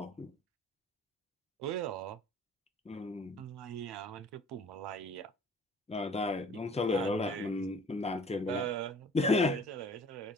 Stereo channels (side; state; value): both; normal; correlation 0.50